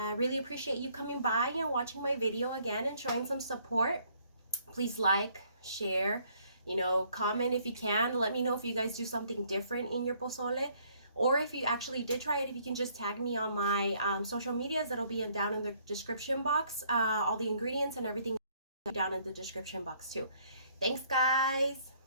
really appreciate you coming by and watching my video again and showing some support. Please like, share, comment if you can. Let me know if you guys do something different in your pozole, or if you actually did try it, if you can just tag me on my social medias. That'll be down in the description box. All the ingredients and everything down in the description box too. Thanks, guys.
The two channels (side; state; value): both; inverted; correlation -0.65